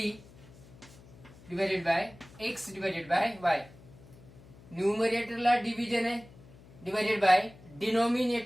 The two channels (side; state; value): left; noise; hum, 22 dB below the sound